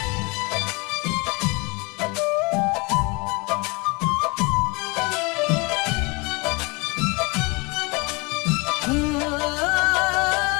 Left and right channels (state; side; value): quieter; right; 28.0 dB